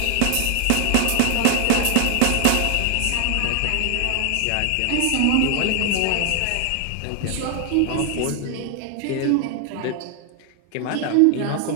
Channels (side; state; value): both; different; correlation 0.00